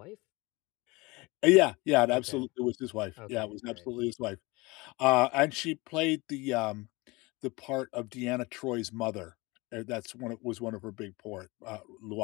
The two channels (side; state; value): right; quieter; 24.1 dB